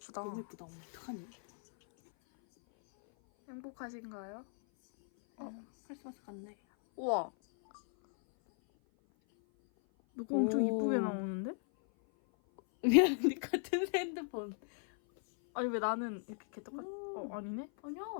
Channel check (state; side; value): silent; right; 53 dB below the other